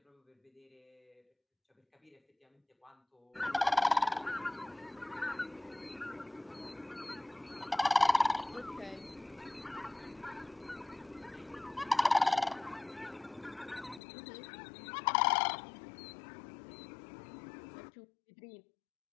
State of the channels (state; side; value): drops out; right; at 14.0 s